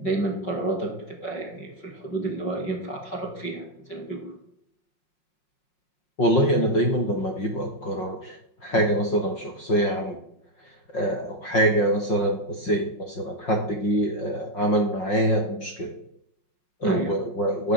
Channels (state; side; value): late; right; 5.5 ms